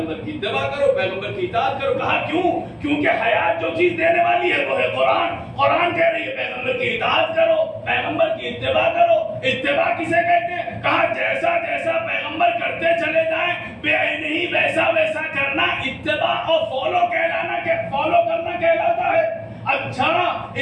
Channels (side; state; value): both; identical; correlation 1.00